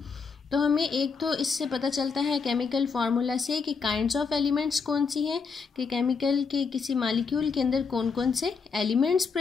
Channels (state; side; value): quieter; right; 5.3 dB